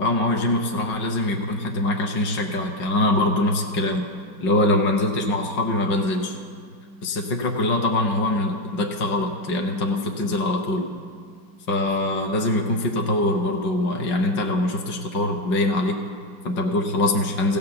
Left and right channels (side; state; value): right; late; 5.4 ms